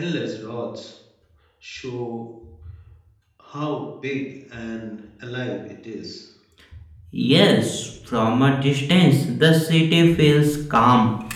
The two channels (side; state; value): both; identical; correlation 1.00